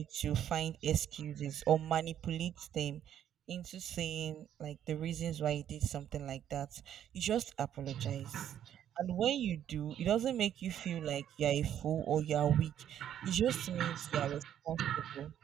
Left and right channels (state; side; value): quieter; left; 10.3 dB